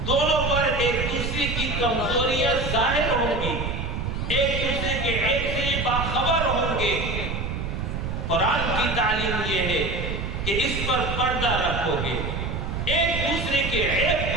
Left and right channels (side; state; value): right; noise; rumble, 3 dB below the sound